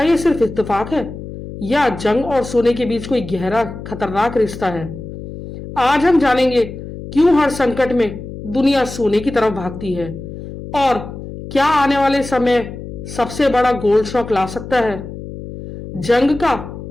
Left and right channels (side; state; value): left; noise; hum, 11 dB below the sound